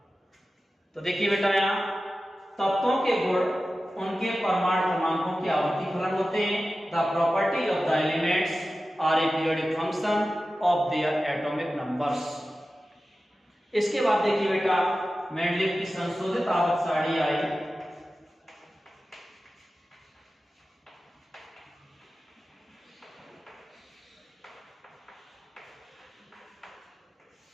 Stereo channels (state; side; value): normal; both; correlation 0.94